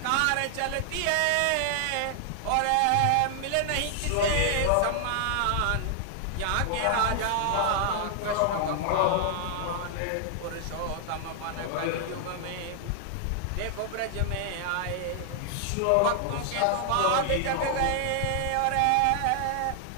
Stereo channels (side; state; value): both; different; correlation 0.00